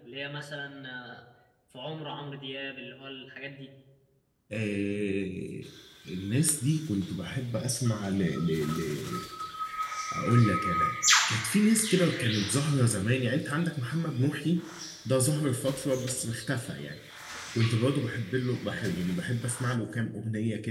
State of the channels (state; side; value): identical; both; correlation 1.00